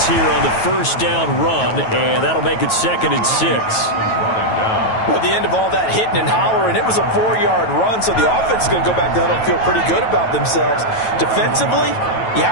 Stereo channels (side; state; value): right; late; 9.2 ms